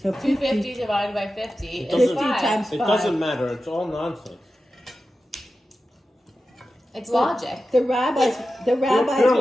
250 divided by 50 It is doesn't- 5. times It 5. doesn't matter. It's all nonsense. It's logic. The rabbis Pure were,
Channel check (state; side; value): normal; both; correlation 0.92